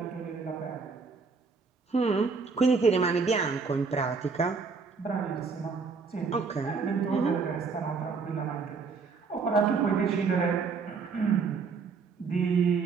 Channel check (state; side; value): quieter; left; 5.0 dB